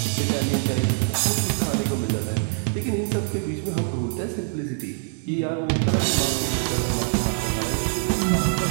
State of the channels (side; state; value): left; silent; digital silence